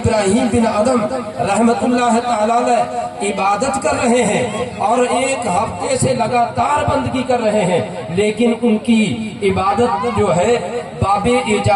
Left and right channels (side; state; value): both; identical; correlation 1.00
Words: بن ادم رحمت اللہ تعالی عبادت کر رہے ہیں اور ایک ہفتے سے لگاتار بندگی کر رہے ہیں، لیکن ان کی عبادت جو ہے باب